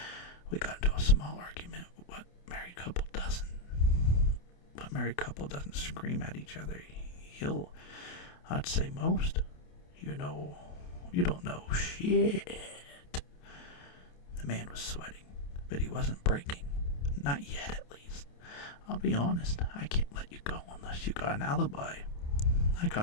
We got into a small argument. What married couple doesn't? What married couple doesn't scream at each other? I'd say most. You don't know shit. The man was sweating, but he wasn't breaking. Not yet, at least. I'll be honest, I can't let you go unless you got an alibi. I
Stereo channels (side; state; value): right; late; 28 ms